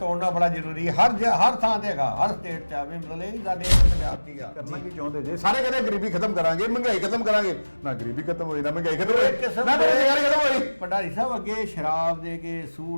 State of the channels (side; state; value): both; inverted; correlation -1.00